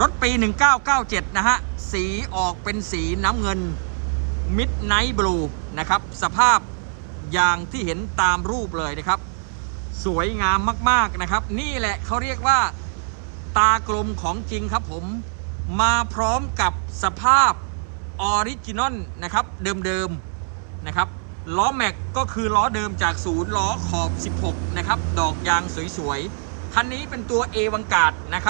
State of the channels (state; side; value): silent; left; 64 dB below the other